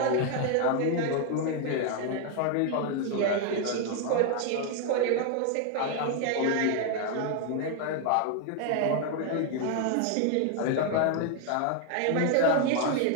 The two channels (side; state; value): both; different; correlation 0.01